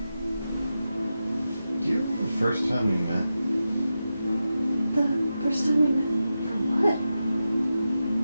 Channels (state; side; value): inverted; both; correlation -0.91